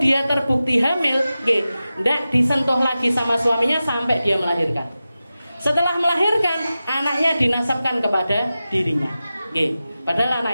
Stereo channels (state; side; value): inverted; both; correlation -0.94